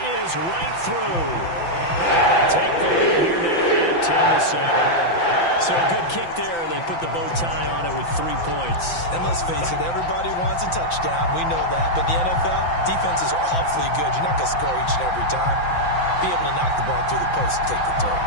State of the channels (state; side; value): late; right; 5.9 ms